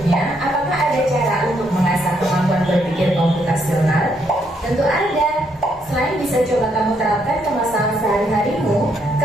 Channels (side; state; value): both; normal; correlation 0.74